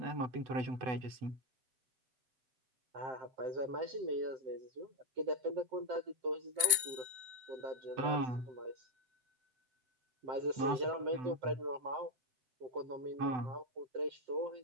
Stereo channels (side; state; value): left; late; 7.4 ms